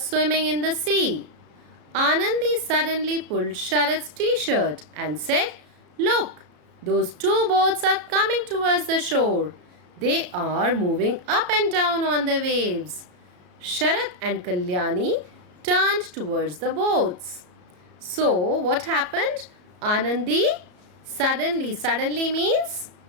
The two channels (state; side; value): late; left; 34 ms